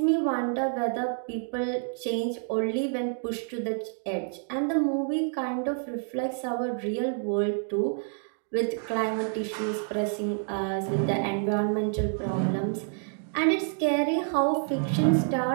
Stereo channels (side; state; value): left; silent; 59 dB below the other